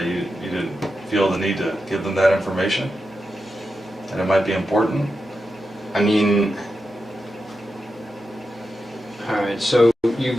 You didn't feel the need to give them that information? And it might be important? I mean... Alright, so you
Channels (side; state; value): both; normal; correlation 0.89